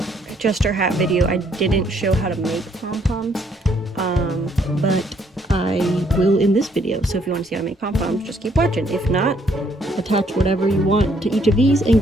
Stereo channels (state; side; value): normal; both; correlation 0.68